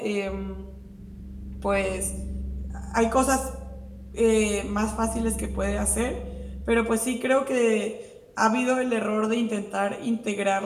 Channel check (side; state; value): both; identical; correlation 1.00